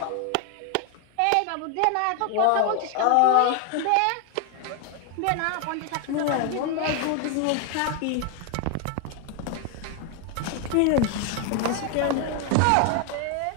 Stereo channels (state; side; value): different; both; correlation 0.01